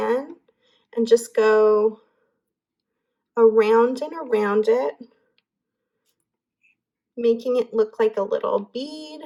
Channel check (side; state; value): both; identical; correlation 1.00